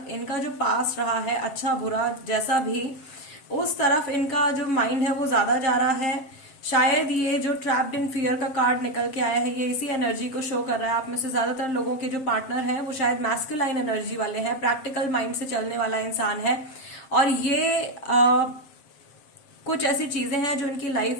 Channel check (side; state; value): right; late; 7.6 ms